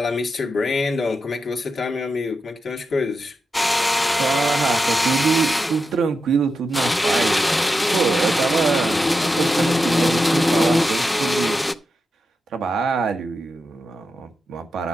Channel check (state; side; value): normal; both; correlation 0.88